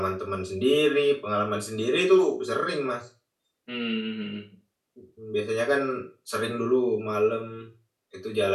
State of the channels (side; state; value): both; identical; correlation 1.00